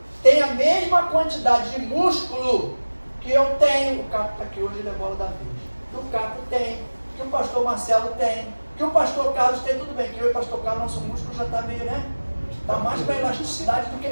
tem a mesma quantidade de músculo que eu tenho. O Caco está aqui hoje, ele é bola da vez. Que o Caco tem, que o pastor Marcelo tem, que o pastor Carlos tem. Tudo bem, que eu e o pastor Carlos, nosso músculo já está meio, né? Está mais para elasticidade do que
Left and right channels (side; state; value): both; inverted; correlation -1.00